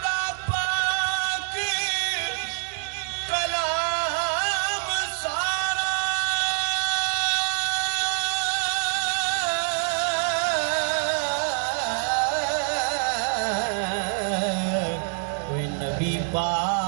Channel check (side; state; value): left; silent; digital silence